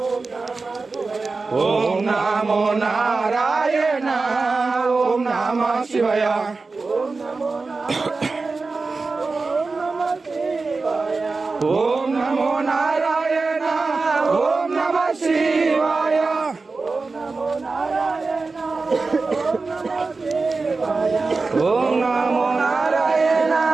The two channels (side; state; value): left; quieter; 4.0 dB